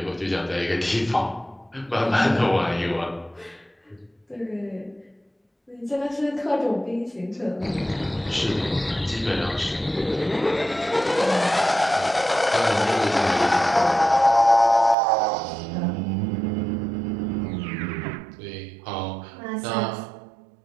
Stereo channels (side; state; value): left; drops out; at 15.0 s